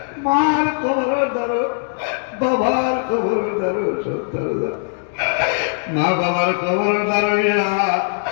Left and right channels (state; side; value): silent; right; digital silence